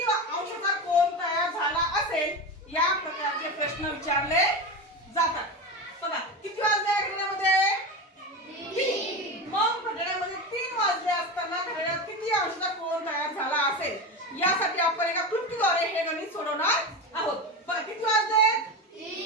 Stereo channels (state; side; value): normal; both; correlation 0.21